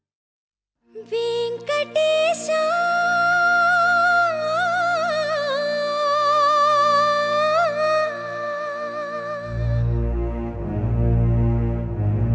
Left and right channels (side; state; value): both; identical; correlation 1.00